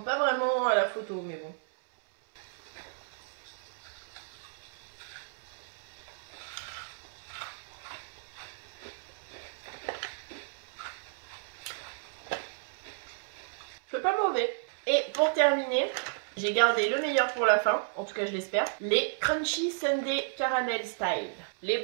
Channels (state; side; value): silent; left; digital silence